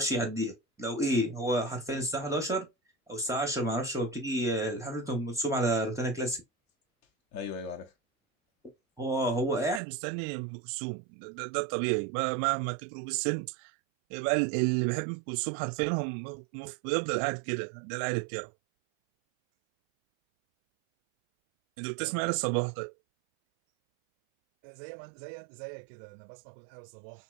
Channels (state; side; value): drops out; left; at 9.8 s